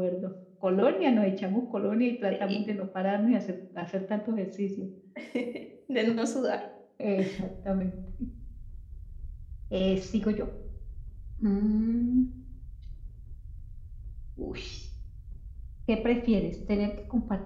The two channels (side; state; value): both; identical; correlation 1.00